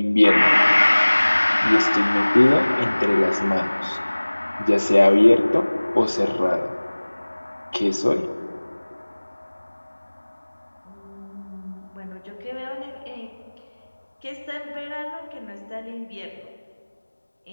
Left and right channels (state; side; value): inverted; both; correlation -1.00